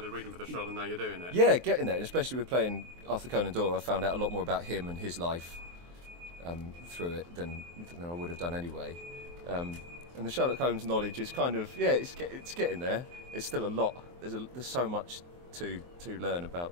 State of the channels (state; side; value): late; left; 23 ms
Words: reading for the show and now you're doing it? Yeah, getting there, and especially with playing Arthur Conan Doyle, I found out a lot more about him and his life through it than I would have done anyway. And the Sherlock Holmes knowledge is kind of it's getting there. It's still a lot. There's so much to learn